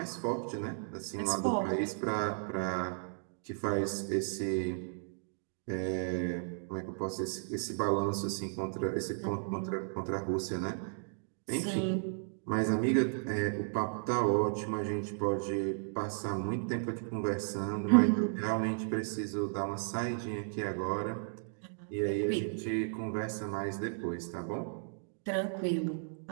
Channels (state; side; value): silent; left; digital silence